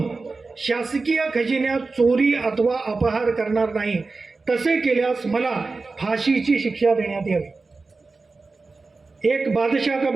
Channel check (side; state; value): left; quieter; 3.9 dB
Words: शासकीय खजिन्यात चोरी अथवा अपहार करणार नाही. तसे केल्यास मला फाशीची शिक्षा देण्यात यावी. एक बादशाह का